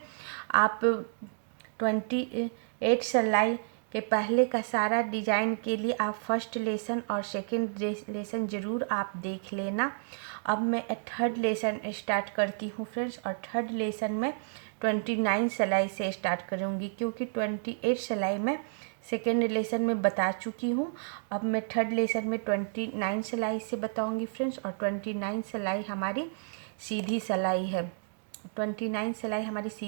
आप 28 सिलाई के पहले का सारा डिज़ाइन के लिए आप फर्स्ट लेसन और सेकंड लेसन ज़रूर आप देख लेना। अब मैं थर्ड लेसन स्टार्ट करती हूँ फ्रेंड्स, और थर्ड लेसन में 29 सिलाई से स्टार्ट करूँगी क्योंकि 28 सिलाई में सेकेंड लेसन में बता चुकी हूँ। अब मैं थर्ड लेसन में 29 सिलाई से बताऊँगी फ्रेंड्स, और 29 सिलाई हमारी सीधी सिलाई है। 29 सिलाई हमारी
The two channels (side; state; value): left; silent; digital silence